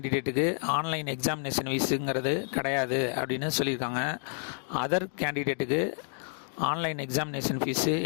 ஆன்லைன் எக்ஸாமினேஷன் ஃபீஸுங்கிறது கிடையாது அப்படின்னு சொல்லியிருக்காங்க. அதர் கேண்டிடேட்டுக்கு ஆன்லைன் எக்ஸாமினேஷன் ஃபீஸு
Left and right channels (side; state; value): right; silent; 56 dB below the other